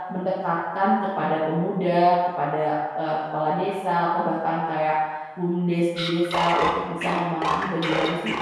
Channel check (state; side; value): identical; both; correlation 1.00